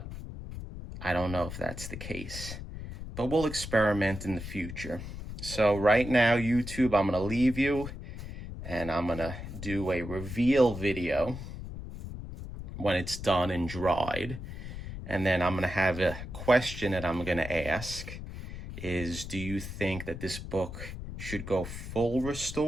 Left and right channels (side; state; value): left; noise; rumble, 9 dB below the sound